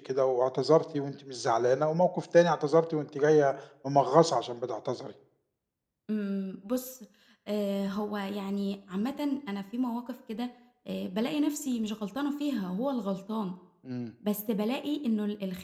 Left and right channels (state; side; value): identical; both; correlation 1.00